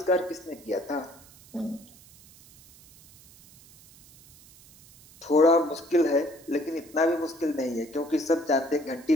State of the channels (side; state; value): right; noise; hiss, 24 dB below the sound